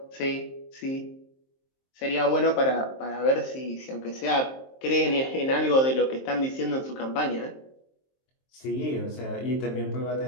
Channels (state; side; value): late; right; 23 ms